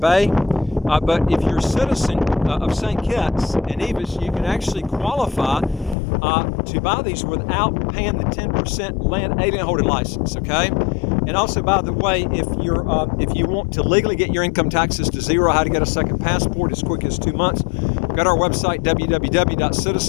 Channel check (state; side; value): drops out; right; at 6.0 s